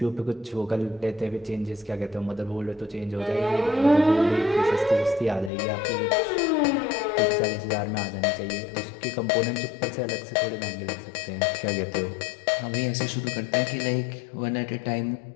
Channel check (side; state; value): right; drops out; at 5.5 s